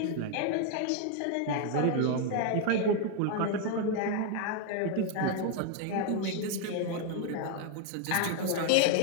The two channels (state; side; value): different; both; correlation 0.01